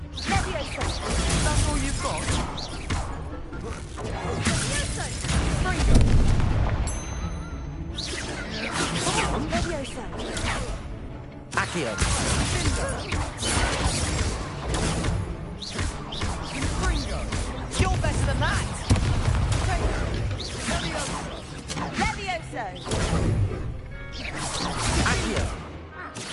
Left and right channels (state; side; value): identical; both; correlation 1.00